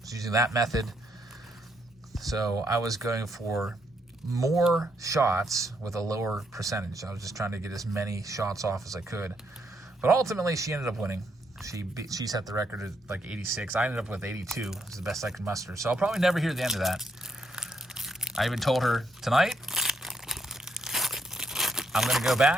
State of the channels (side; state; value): both; normal; correlation 0.76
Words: that method. So I was going for more shots with a lower percentage. I was just trying to get as many shots off as I could. But ultimately, she ended up winning. She set the record at like 86. I ended up with 82. It's the best I could muster. So I'll probably never hear the end of that. I even told her tonight, I'm going to go